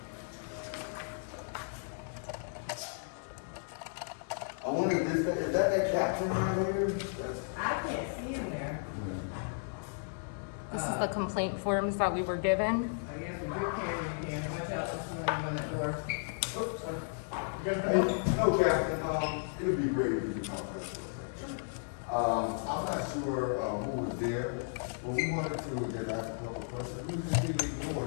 I wonder if this, is that captain right here? I can't see him there. This is the complaint forms that we were given. I guess with your camera, you can. Watch out, this morning on that door. Oops, sorry. Hey, no, Captain, it'd be great if you could talk to us for a second. I'm not sure, who was there, but we wanted to just ask a couple of questions. We just didn't ignore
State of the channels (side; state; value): right; silent; digital silence